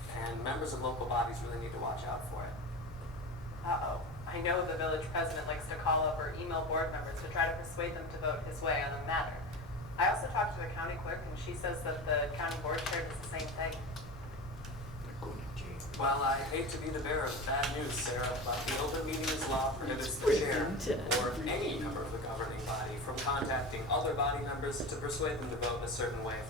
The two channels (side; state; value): both; normal; correlation 0.28